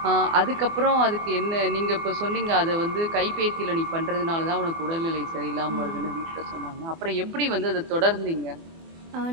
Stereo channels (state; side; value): late; left; 24 ms